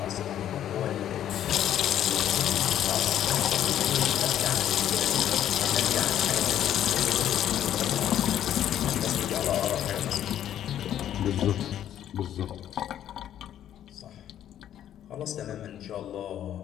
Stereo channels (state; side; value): quieter; right; 10.9 dB